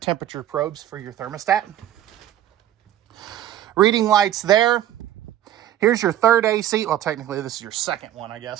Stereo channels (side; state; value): left; quieter; 12.2 dB